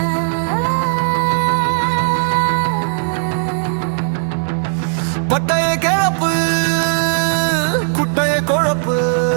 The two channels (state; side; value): silent; left; digital silence